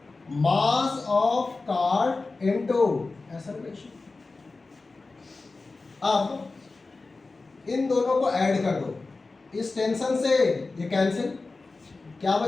Mass of cart into acceleration. अब इन दोनों को ऐड कर दो, इस टेंशन से ये कैंसिल, क्या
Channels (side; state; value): right; quieter; 3.7 dB